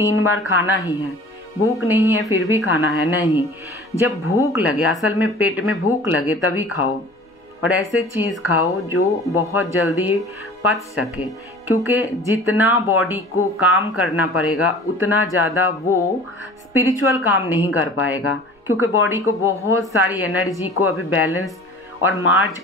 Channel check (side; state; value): both; normal; correlation 0.43